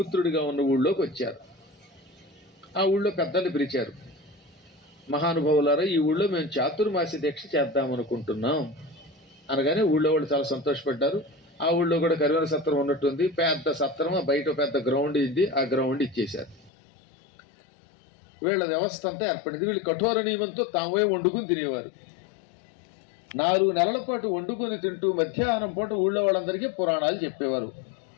ఉన్న ఊళ్ళోకి వచ్చారు. ఆ ఊళ్ళో పెద్దల్ని పిలిచారు. మహానుభావులారా, ఈ ఊళ్ళో మేము చాతుర్మాస్య దీక్ష చేద్దామనుకుంటున్నాం అనగానే ఊళ్ళో వాళ్ళు చాలా సంతోషపడ్డారు. ఆ ఊళ్ళో కూడా కరివేల సత్రం ఉన్నట్టుంది, పెద్ద సత్రం, బయట పెద్ద గ్రౌండ్ ఇది, ఆ గ్రౌండ్ ఇచ్చేశారు. వీళ్ళ వ్యవస్థ అంతా ఏర్పడింది. వీళ్ళు కఠోర నియమంతో తామే వండుకుని తినేవారు. 4 నెలల పాటు వండుకొని తింటూ మధ్యాహ్నం పూట ఊళ్ళో వాళ్ళందరికీ పురాణాలు చెప్పేవారు.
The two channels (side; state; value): right; drops out; at 16.7 s